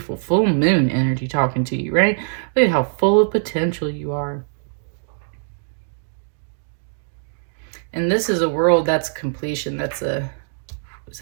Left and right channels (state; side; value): silent; left; digital silence